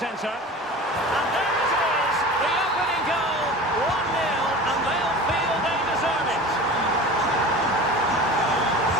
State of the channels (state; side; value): normal; both; correlation 0.36